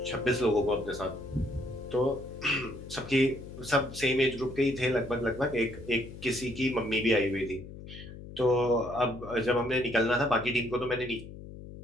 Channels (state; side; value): noise; left; hum, 13 dB below the sound